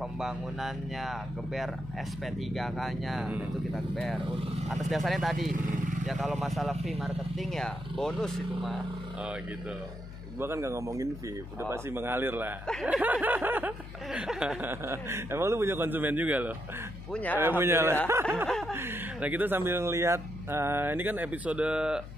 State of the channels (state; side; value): noise; left; hum, 12 dB below the sound